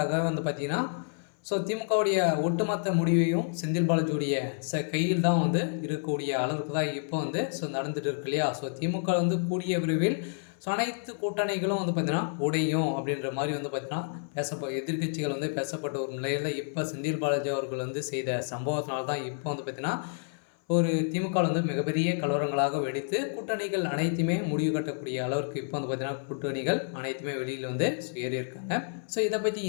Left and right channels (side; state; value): right; silent; 58 dB below the other